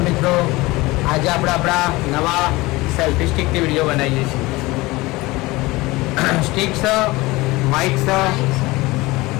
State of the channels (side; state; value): right; quieter; 21.1 dB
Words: મિત્રો. આજે આપણે આપણા નવા સેલ્ફી સ્ટિકની વિડીયો બનાવીએ છીએ. સ્ટિક છે, માઇક છે.